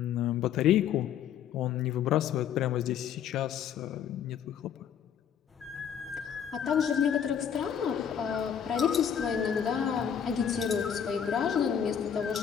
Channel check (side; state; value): right; quieter; 8.5 dB